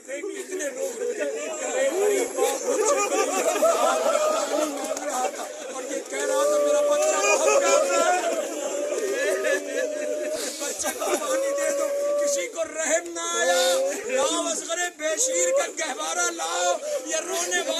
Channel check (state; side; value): identical; both; correlation 1.00